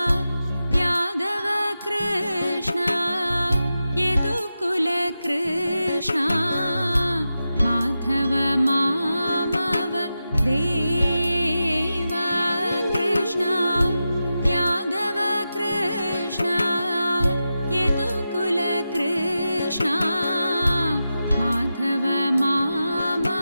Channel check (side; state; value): both; inverted; correlation -0.91